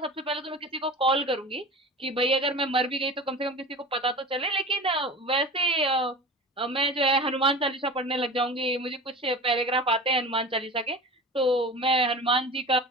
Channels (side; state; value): both; normal; correlation 0.34